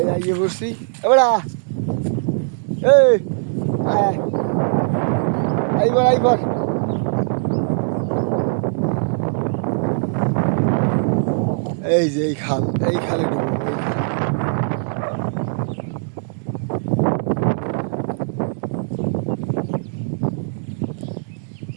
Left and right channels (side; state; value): left; silent; digital silence